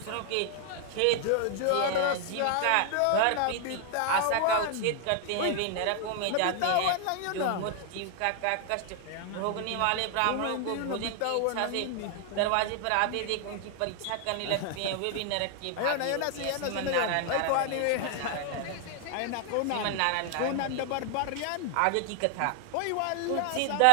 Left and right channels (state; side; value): different; both; correlation 0.00